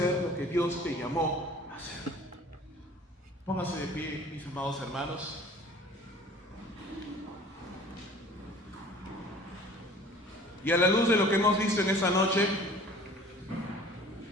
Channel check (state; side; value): normal; both; correlation 0.47